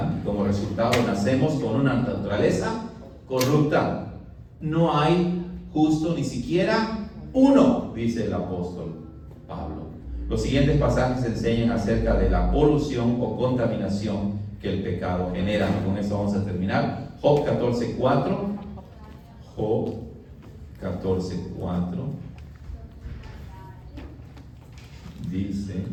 Como resultado nacemos con una naturaleza corrupta. No hay justo ni siquiera uno, dice el apóstol Pablo. Los siguientes pasajes enseñan acerca de la polución o contaminación que el pecado genera. Con eso vamos a terminar. Job 14:4. Job 14:4 dice:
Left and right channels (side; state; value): both; identical; correlation 1.00